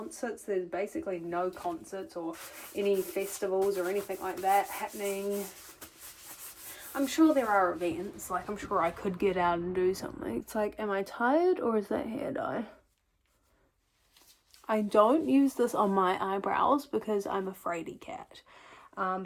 there's basically no concerts or any festivals or anything like that happening. I'm sure there are events. Like, I'm sure I could get out and do something. It's like, am I tired or is that hair dye? I don't use this on my eyebrows because I'm a fraidy cat.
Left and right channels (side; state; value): both; identical; correlation 1.00